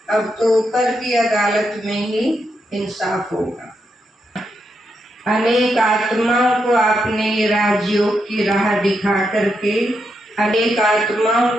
अब तो ऊपर की अदालत में ही इंसाफ होगा। अनेक आत्माओं को आपने राजयोग की राह दिखा करके अनेक आत्माओं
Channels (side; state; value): both; normal; correlation 0.83